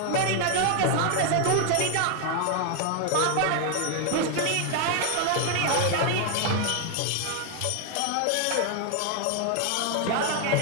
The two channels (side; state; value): both; different; correlation 0.01